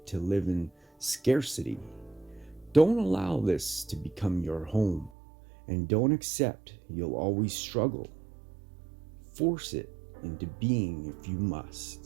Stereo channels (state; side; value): drops out; left; at 5.1 s